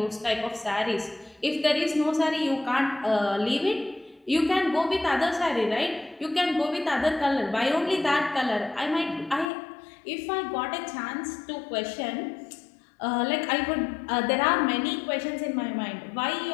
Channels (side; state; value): right; drops out; at 9.5 s